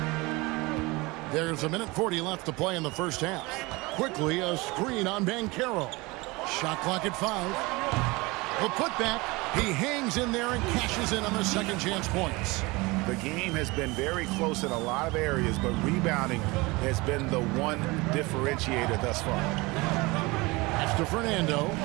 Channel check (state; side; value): quieter; left; 23.6 dB